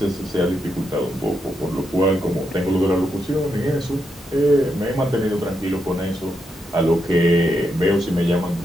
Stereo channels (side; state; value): both; normal; correlation 0.82